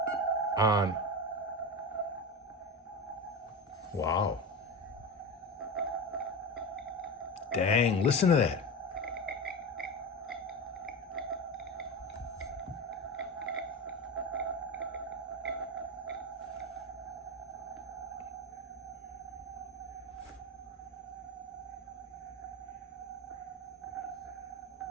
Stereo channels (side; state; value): both; normal; correlation 0.23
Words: Wow. Dang, listen to that.